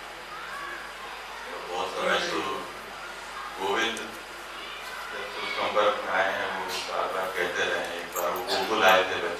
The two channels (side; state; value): both; identical; correlation 1.00